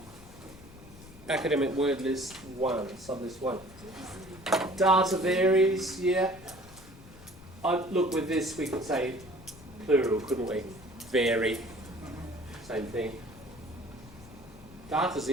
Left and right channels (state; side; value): noise; left; rumble, 20 dB below the sound